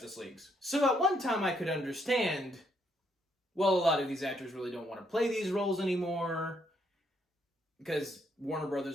Leagues. So at one time I could understand, well, a lot of these actors really don't want to play these roles anymore because Warner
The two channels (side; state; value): both; normal; correlation 0.73